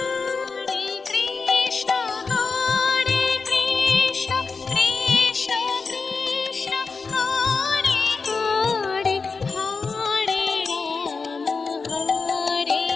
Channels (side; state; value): right; quieter; 4.6 dB